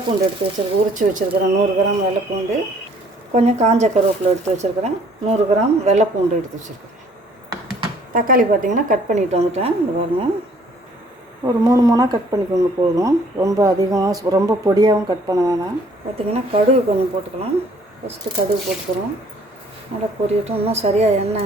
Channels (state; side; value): normal; both; correlation 0.59